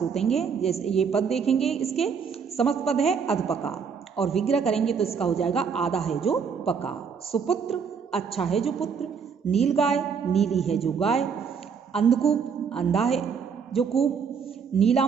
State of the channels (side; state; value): left; quieter; 6.3 dB